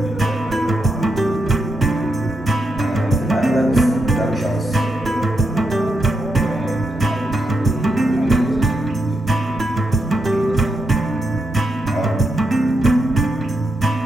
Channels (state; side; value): normal; both; correlation 0.84